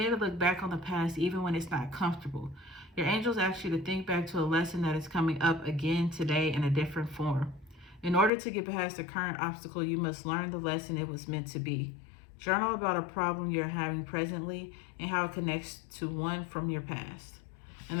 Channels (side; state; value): right; drops out; at 8.3 s